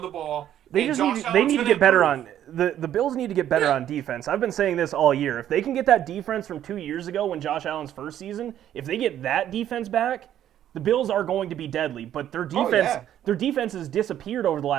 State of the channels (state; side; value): quieter; left; 11.1 dB